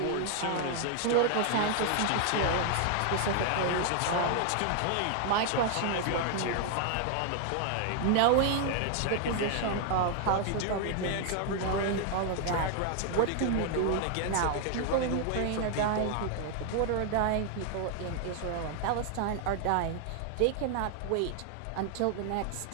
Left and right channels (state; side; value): different; both; correlation 0.00